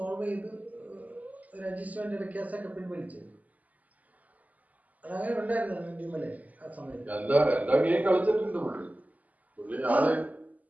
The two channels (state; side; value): late; left; 0.076 ms